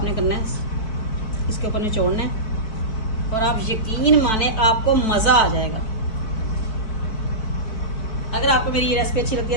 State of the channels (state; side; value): late; right; 4.4 ms